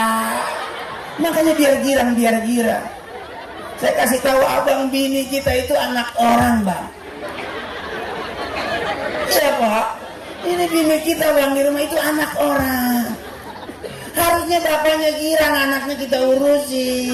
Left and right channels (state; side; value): identical; both; correlation 1.00